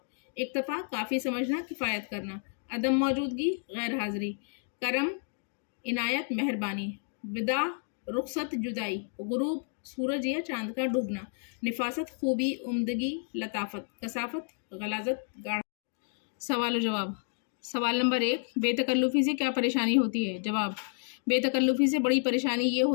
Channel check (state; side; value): silent; right; 57 dB below the other